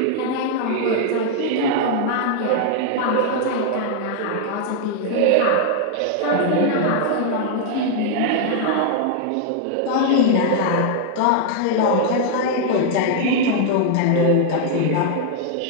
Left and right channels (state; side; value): different; both; correlation 0.00